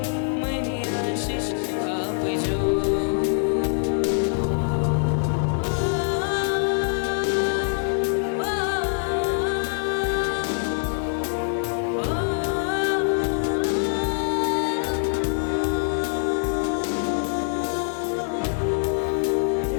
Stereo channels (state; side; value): silent; right; digital silence